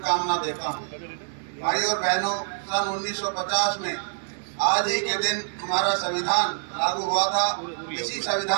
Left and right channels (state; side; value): silent; left; digital silence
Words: देता हूँ। भाई और बहनों, सन 1950 में आज ही के दिन हमारा संविधान लागू हुआ था। इसी